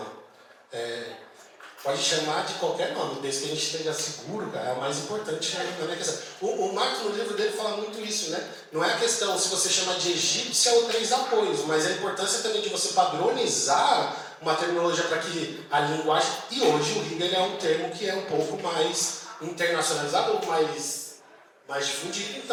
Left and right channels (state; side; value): identical; both; correlation 1.00